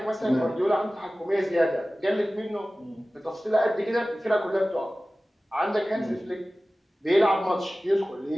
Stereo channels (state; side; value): normal; both; correlation 0.97